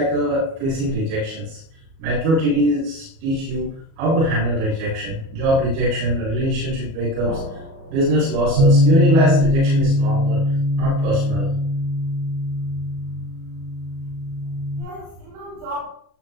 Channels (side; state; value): left; late; 37 ms